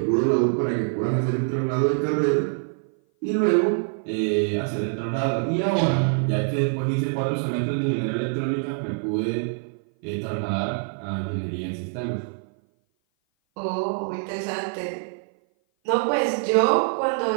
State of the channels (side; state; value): left; silent; 57 dB below the other